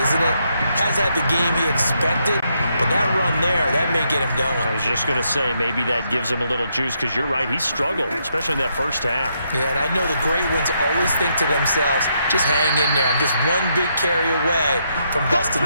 it? Has had the game he expected, But that run there, that may get him going. I was just going to say, maybe that gives him a little juice, because you're right, he struggled, especially in that first half. Yeah, and I know the great ones always think to themselves, just hang in there. I'm just one big carry away from busting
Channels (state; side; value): inverted; both; correlation -0.77